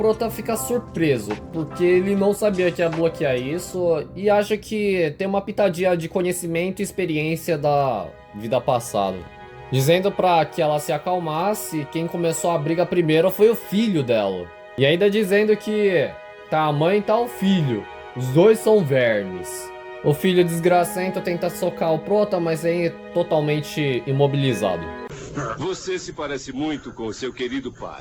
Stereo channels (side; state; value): both; identical; correlation 1.00